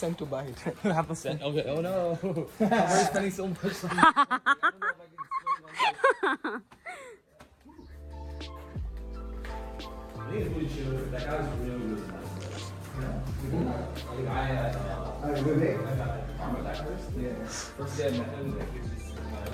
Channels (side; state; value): both; identical; correlation 1.00